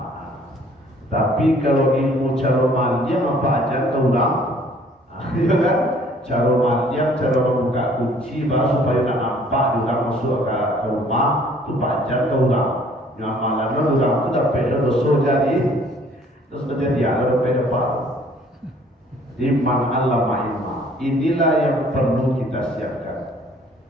Tapi kalau ilmu cara maliam apa aja terulang, ya kan? Cara maliam, cara membuka kunci baru supaya tak nampak juga masuk ke rumah, itu pajar terulang. Nyamalan terulang itu dapat dosa jadi, terus menjadi ada dapat. Di man allama ilma. Inilah yang perlu kita siapkan.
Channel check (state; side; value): normal; both; correlation 0.57